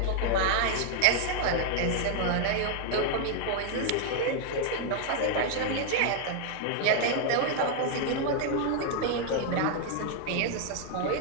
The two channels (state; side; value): different; both; correlation 0.00